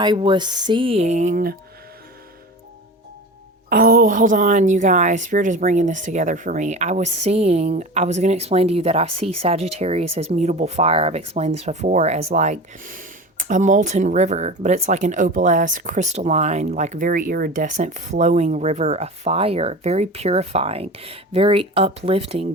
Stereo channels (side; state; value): both; normal; correlation 0.33